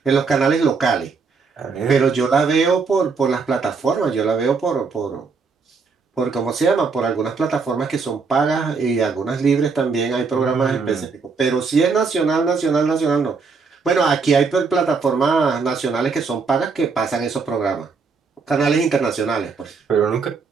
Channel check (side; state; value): left; quieter; 4.9 dB